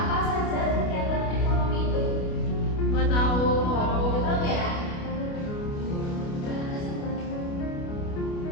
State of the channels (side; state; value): right; late; 29 ms